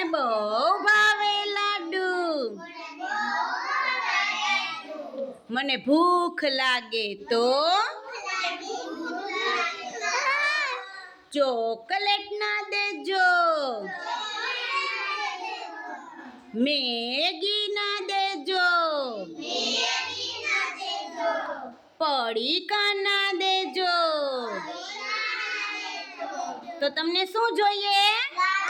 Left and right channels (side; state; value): both; identical; correlation 1.00